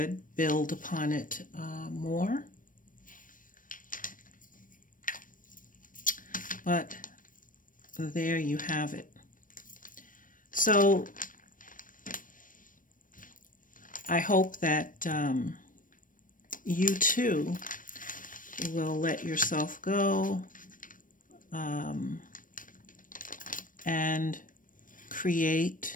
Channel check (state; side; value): late; right; 0.39 ms